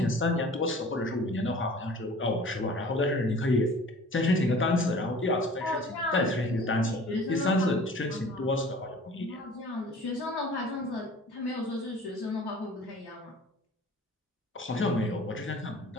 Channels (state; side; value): normal; both; correlation 0.46